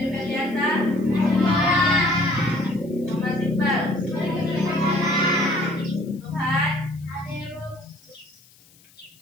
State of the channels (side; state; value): left; noise; hiss, 28 dB below the sound